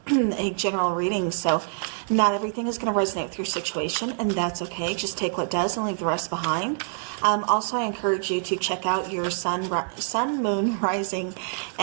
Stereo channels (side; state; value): left; silent; digital silence